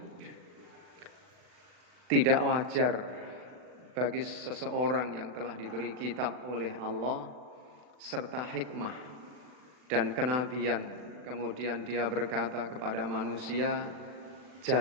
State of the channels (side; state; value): left; late; 40 ms